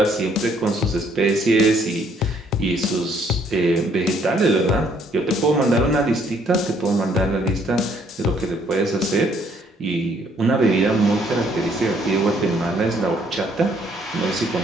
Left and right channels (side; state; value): both; normal; correlation 0.65